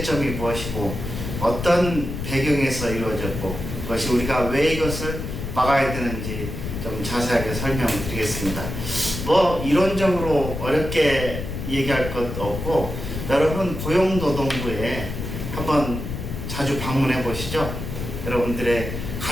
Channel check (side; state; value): left; noise; rumble, 6 dB below the sound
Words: 무엇이고 어떤 배경에서 이루어졌고 그것이 우리가 왜 이것을 막아야 되는지 좀 자세하게 설명드리겠습니다. 이론적으로 어렵게 얘기할 것 없고, 여러분 고용노동부에 한번 자주 방문해 보시죠. 여러분들의